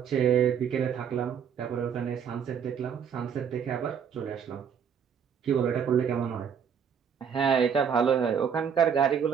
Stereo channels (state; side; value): quieter; left; 7.4 dB